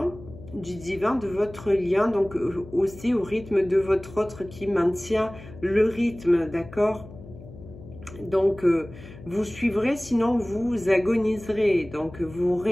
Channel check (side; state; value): left; noise; hum, 17 dB below the sound